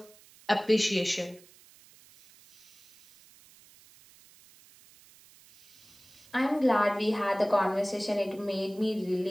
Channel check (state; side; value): noise; right; hiss, 26 dB below the sound